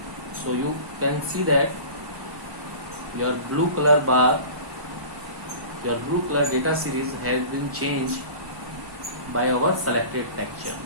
so you can see that your blue color bar, your blue color data series has been changed by our selected texture.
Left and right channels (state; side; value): late; left; 1.0 ms